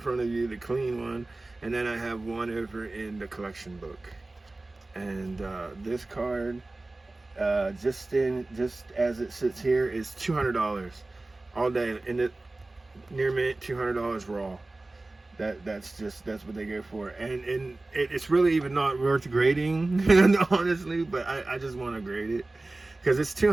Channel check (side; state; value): left; quieter; 3.0 dB